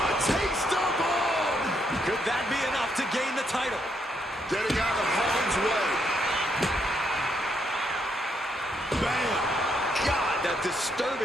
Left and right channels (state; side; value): normal; both; correlation 0.76